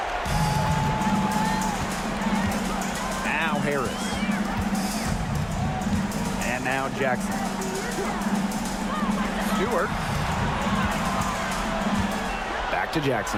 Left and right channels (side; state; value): both; identical; correlation 1.00